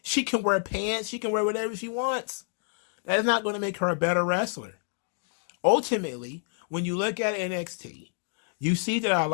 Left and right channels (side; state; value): right; silent; 59 dB below the other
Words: can wear pants. She can wear whatever she wants. That's not going to make her a better wrestler. Ultimately, when you look at NXT, you see that a